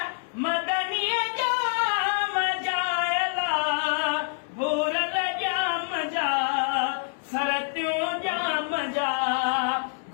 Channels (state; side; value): silent; right; 61 dB below the other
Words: मदनीय जा मजाए ला भूरल जा मजा सरत्यूं जा मजा